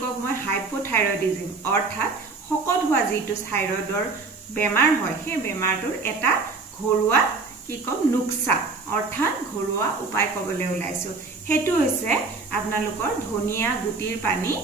মই হাইপোথাইৰয়ডিজম অৰ্থাৎ শকত হোৱা যিটো থাইৰয়ডৰ বেমাৰ হয় সেই বেমাৰটোৰ এটা ঘৰুৱা নুক্সা অৰ্থাৎ ঘৰুৱা উপায় কবলৈ ওলাইছো হেতু হৈছে আপোনালোকৰ ধনিয়া গুটিৰ পানী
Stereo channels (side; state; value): left; quieter; 4.0 dB